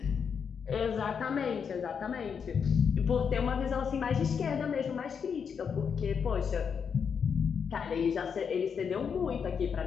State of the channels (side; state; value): right; quieter; 6.7 dB